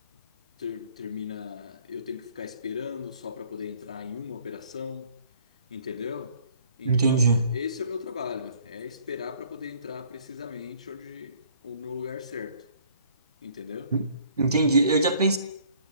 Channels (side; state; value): both; inverted; correlation -0.58